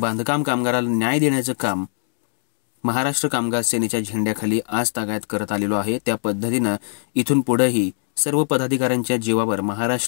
कामगाराला न्याय देण्याचं काम महाराष्ट्र कामगार सेनेच्या झेंड्याखाली आज तागायत करत आलेलो आहे। त्या पद्धतीनं इथून पुढेही सर्व पदाधिकाऱ्यांच्या जीवावर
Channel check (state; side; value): silent; right; digital silence